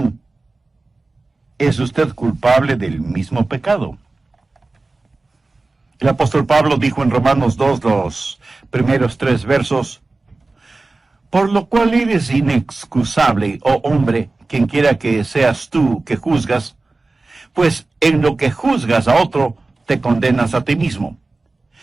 ¿es usted culpable del mismo pecado? El apóstol Pablo dijo en Romanos 2, los primeros 3 versos, por lo cual eres inexcusable, oh hombre, quien quiera que seas tú que juzgas, pues en lo que juzgas a otro, te condenas a ti mismo.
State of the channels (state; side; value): quieter; left; 3.4 dB